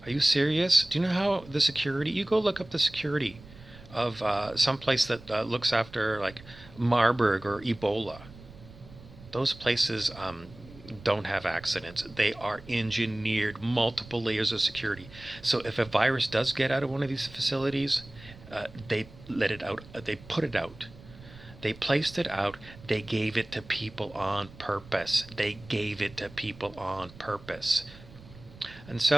Are you serious? Do you know how the security, you go look up the security of some place that looks after like Marburg or Ebola. Those places don't have accidents. They are engineered, multiple layers of security. So if a virus does get out of one of these facilities, they let it out. They put it out. They placed it out. They gave it to people on purpose. They gave it to people on purpose. And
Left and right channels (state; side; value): noise; right; rumble, 19 dB below the sound